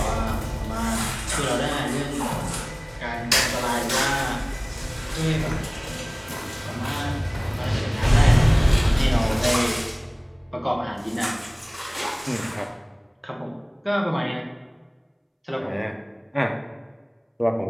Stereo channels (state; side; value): identical; both; correlation 1.00